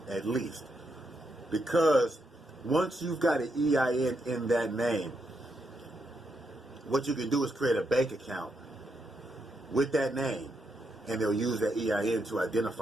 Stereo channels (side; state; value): both; normal; correlation 0.81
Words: at least. Because once you've got an EIN in that name, what you can do is create a bank account with that name, and they'll use that EIN to